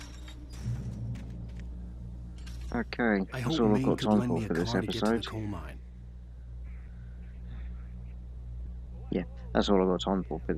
Okay, that's all I've got time for this episode. Yeah, that's all I've got time for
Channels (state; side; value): identical; both; correlation 1.00